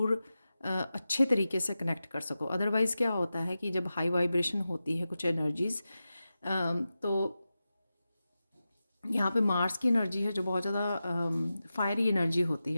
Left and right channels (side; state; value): both; inverted; correlation -0.93